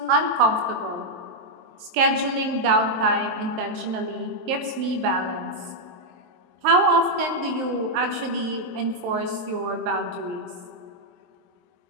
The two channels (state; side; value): late; left; 23 ms